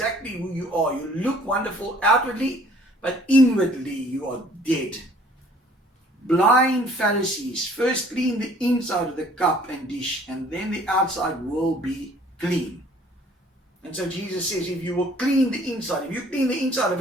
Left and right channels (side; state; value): both; normal; correlation 0.56